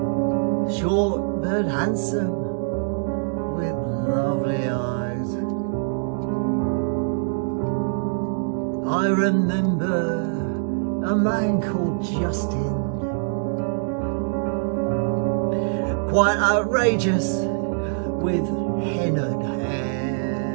short but handsome, with lovely eyes. I remember a man called Justin, quite outrageous, with hennaed hair.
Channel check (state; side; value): silent; left; digital silence